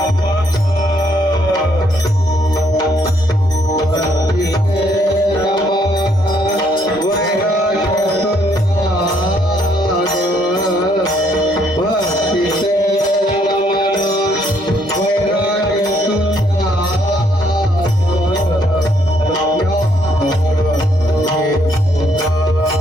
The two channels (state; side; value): normal; both; correlation 0.69